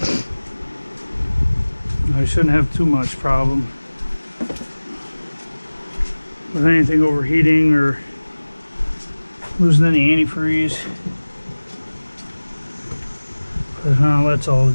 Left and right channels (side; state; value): both; inverted; correlation -1.00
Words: I shouldn't have too much problem with anything overheating or losing any antifreeze. But that's all